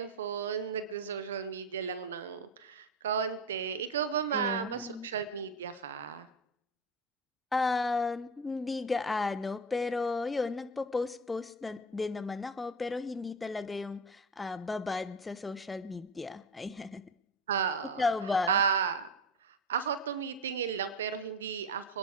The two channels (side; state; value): both; normal; correlation 0.22